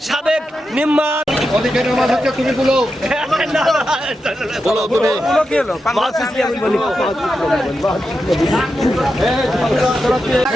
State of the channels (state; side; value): normal; both; correlation 0.88